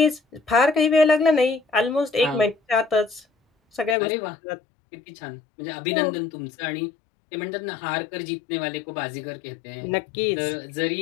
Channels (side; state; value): right; drops out; at 4.0 s